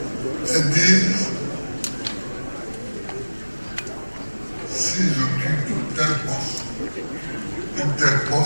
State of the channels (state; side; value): inverted; both; correlation -1.00